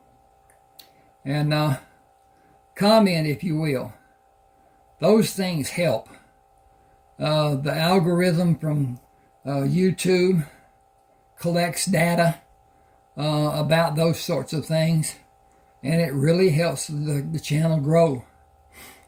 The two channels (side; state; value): both; identical; correlation 1.00